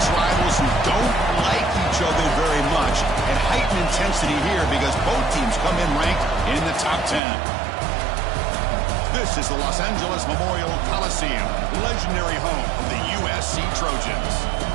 rivals who don't like each other very much, and heightened intensity here because both teams come in ranked in the top 10. This is the Los Angeles Memorial Coliseum, legendary home of the USC Trojans.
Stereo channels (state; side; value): drops out; left; at 7.2 s